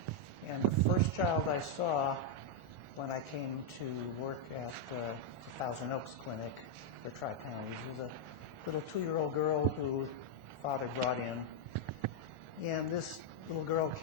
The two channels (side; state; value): left; late; 1.4 ms